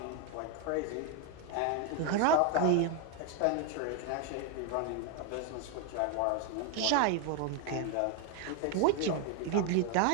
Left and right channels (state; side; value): different; both; correlation 0.01